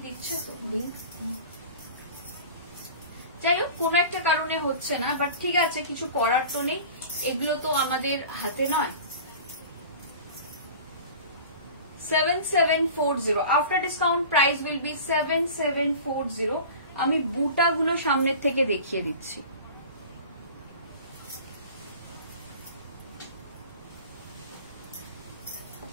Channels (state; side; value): inverted; both; correlation -0.38